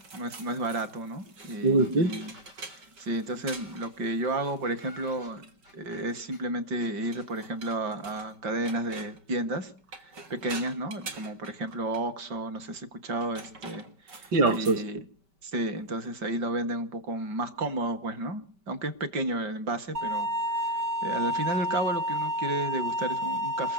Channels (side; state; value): left; late; 5.1 ms